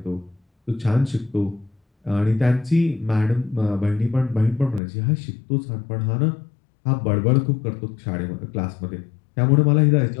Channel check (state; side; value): drops out; right; at 4.8 s